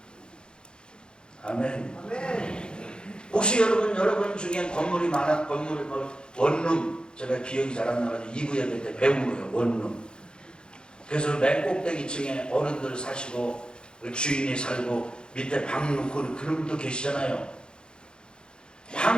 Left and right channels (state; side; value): late; right; 0.049 ms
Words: 아멘. 혹시 여러분 중에 건물이 많아, 건물, 원룸, 제가 기억이 잘 안 나가지고 2부 예배 때 배운 거예요, 원룸. 그래서 맨 꼭대기층에 어른들 사시고, 주인이 살고, 밑에 방 놓고 그런 분도 계시잖아요.